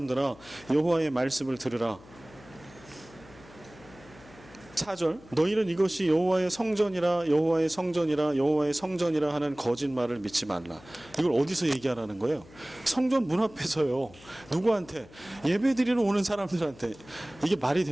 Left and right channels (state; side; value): noise; left; hum, 22 dB below the sound